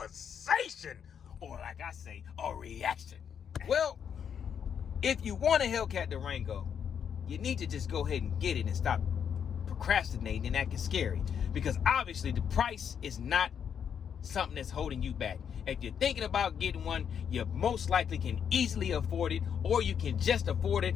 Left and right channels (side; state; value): right; quieter; 7.8 dB